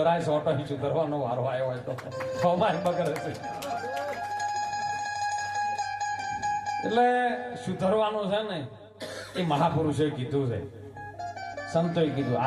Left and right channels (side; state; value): both; identical; correlation 1.00